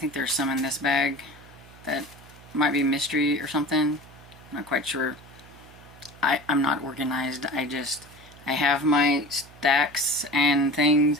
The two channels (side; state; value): right; noise; hum, 22 dB below the sound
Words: there's some in this bag that might be mystery or something. I'm not quite sure. I'm not organized. I have my stacks and things,